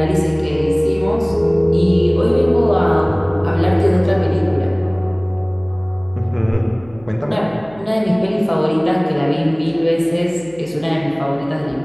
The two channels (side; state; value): right; noise; hum, 24 dB below the sound